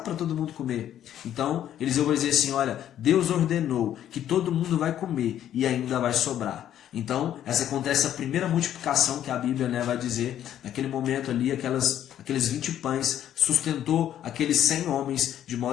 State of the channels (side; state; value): right; quieter; 11.0 dB